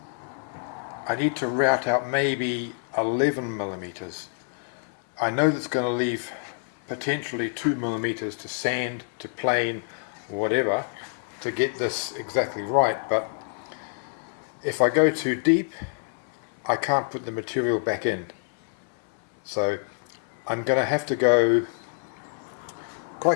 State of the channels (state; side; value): silent; right; 60 dB below the other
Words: I need to route out maybe 11 millimeters. I know that's going to leave potentially 2 millimeters to sand, to plane, whatever, to get this exactly right, but if I go too deep, I can't put the material back in. So I'm going to have to go